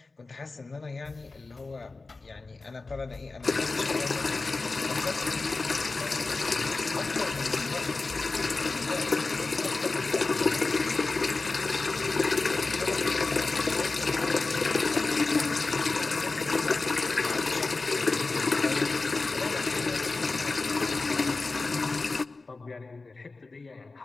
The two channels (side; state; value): right; quieter; 3.7 dB